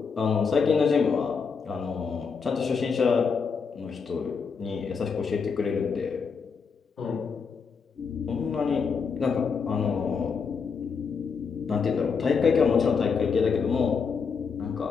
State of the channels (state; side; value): quieter; right; 5.7 dB